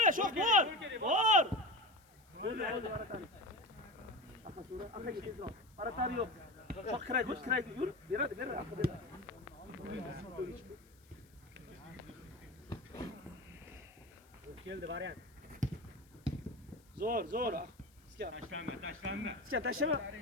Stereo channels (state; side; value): noise; left; hiss, 30 dB below the sound